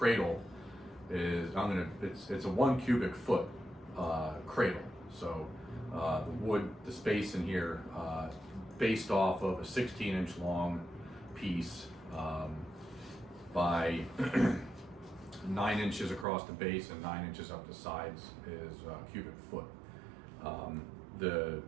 is, it's a 1 cubic foot cradle. So the wood, the space in here, based off of a 16-inch long piece by 9 inches across the base and 9 inches up the sides is a cubic foot.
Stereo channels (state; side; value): drops out; left; at 16.2 s